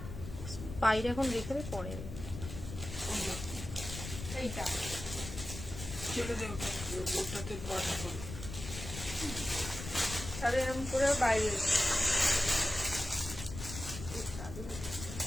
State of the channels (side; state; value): left; noise; rumble, 9 dB below the sound